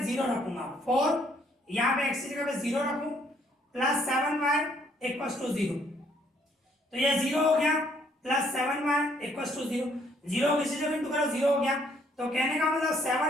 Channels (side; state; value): both; normal; correlation 0.66